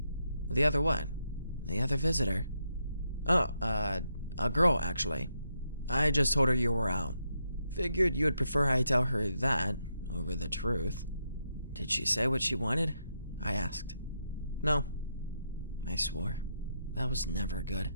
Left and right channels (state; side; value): inverted; both; correlation -0.81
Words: "The other what?" "The other visitor." "Oh, a girl, actually. I just told her you were out. Figured you would prefer I tell her that over the truth." "Did she say what she wanted?" I asked. "No." I swore. That was never good.